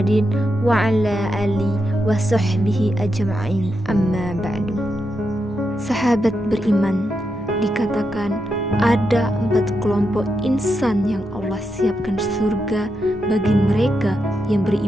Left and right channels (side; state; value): both; normal; correlation 0.85